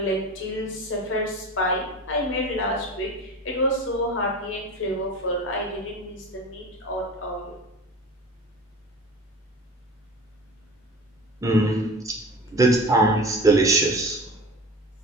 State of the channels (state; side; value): normal; both; correlation 0.34